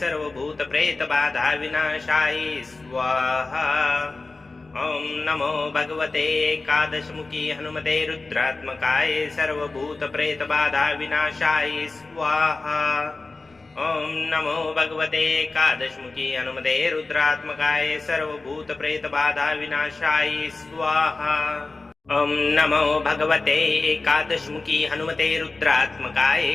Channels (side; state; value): right; quieter; 3.5 dB